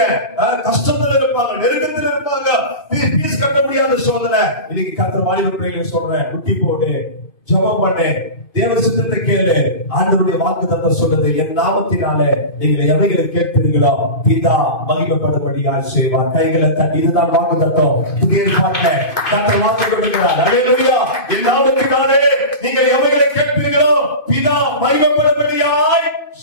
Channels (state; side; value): late; right; 2.5 ms